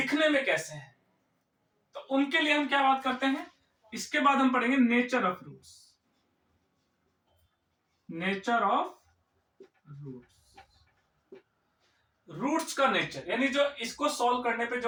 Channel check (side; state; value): both; identical; correlation 1.00